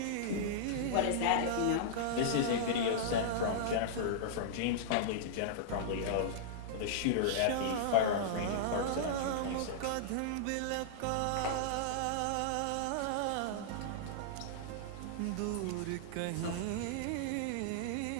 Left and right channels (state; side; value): different; both; correlation -0.02